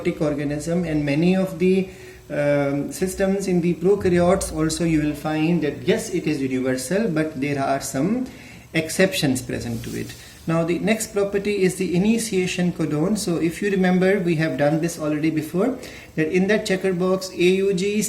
organism and many of the systems in the prokaryotes also, you will find that yes, it is universal, but there are some exceptions present to it. Now the next property is the initiation codon. So if you remember, we have done this already before, that in that checker box AUG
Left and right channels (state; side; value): identical; both; correlation 1.00